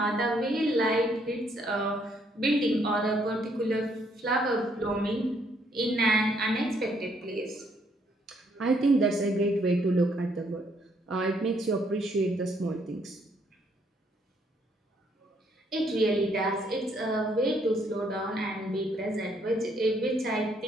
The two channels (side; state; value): both; normal; correlation 0.70